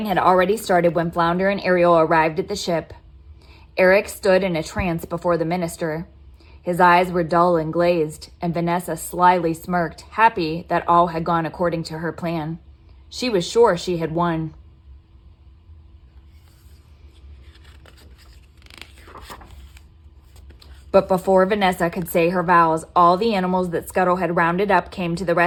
had already started when Flounder and Ariel arrived at the ship. Eric stood in a trance before the minister. His eyes were dull and glazed, and Vanessa slyly smirked, happy that all had gone according to her plan. She was sure she had won. But before Vanessa could say her vows, all the animals that Scuttle had rounded up came to the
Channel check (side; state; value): both; identical; correlation 1.00